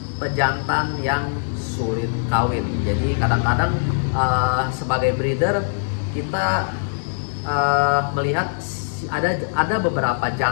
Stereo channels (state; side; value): silent; right; 64 dB below the other